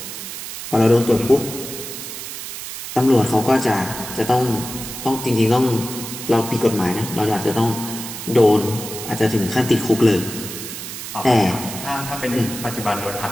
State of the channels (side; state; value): right; noise; hiss, 9 dB below the sound